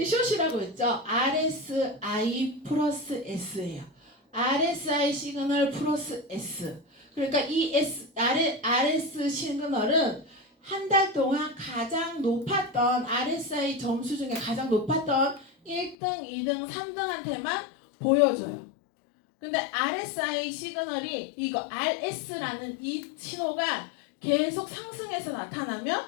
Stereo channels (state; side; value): drops out; right; at 16.0 s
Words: 숏이라고 했죠. RSI 플러스 S예요. RSI 시그널 플러스 S. 그러니까 이 RS 시그널은 한 달 동안 가장 높았던 RSI 점수 중에 가장 높았던 1등, 2등, 3등한테만 보여줘요. 근데 RSI 시그널이 이거 RS라는 이 신호가 계속 상승해서